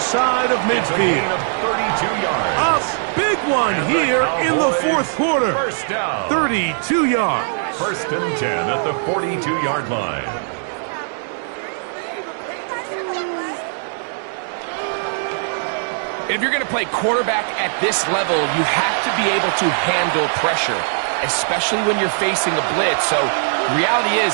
of midfield. 32 yards. A big one here in the 4th quarter. 32 yards. 1st and 10 at the 42-yard line. If you're going to play quarterback at this level, you have to be able to handle pressure, especially when you're facing a blitz. So the reality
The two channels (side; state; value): left; silent; 66 dB below the other